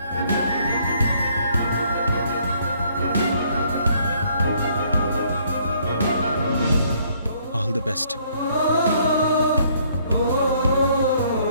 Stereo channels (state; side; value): inverted; both; correlation -0.65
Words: All the best.